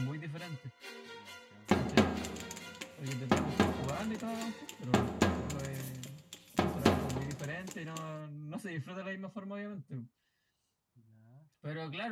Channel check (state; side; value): identical; both; correlation 1.00